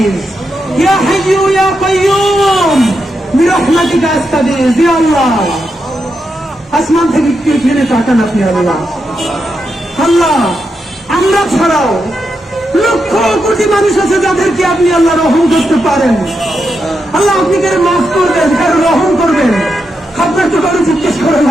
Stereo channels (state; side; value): normal; both; correlation 0.85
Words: يا حي يا قيوم برحمتك أستغيث يا الله আসমান থেকে ফিরে তাকান আপনি আল্লাহ আল্লাহ আমরা ছাড়াও লক্ষ কোটি মানুষ আছে যাদেরকে আপনি আল্লাহ রহম করতে পারেন আল্লাহ আপনি কারো মাফ করবেন কারো রহম করবেন আপনার তো কারো জিজ্ঞেস করা